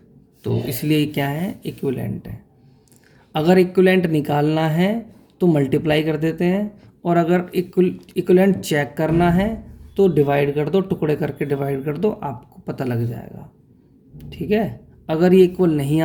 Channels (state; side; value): identical; both; correlation 1.00